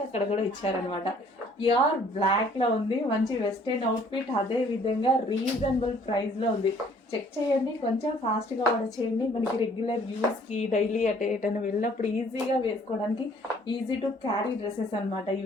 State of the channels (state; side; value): normal; both; correlation 0.59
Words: అక్కడ కూడా ఇచ్చారనమాట. ప్యూర్ బ్లాక్ లో ఉంది, మంచి వెస్టర్న్ అవుట్ఫిట్. అదే విధంగా రీజనబుల్ ప్రైస్ లో ఉంది. చెక్ చేయండి, కొంచెం ఫాస్ట్ గా ఆర్డర్ చేయండి. మనకి రెగ్యులర్ యూస్ కి డైలీ ఎటైనా వెళ్ళినప్పుడు ఈజీగా వేసుకోవడానికి ఈజీ టు క్యారీ డ్రెస్సెస్ అనమాట